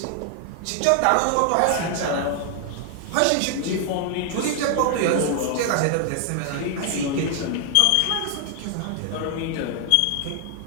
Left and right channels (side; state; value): both; different; correlation 0.00